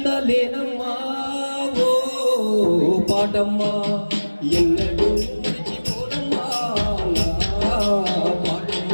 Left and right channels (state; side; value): inverted; both; correlation -1.00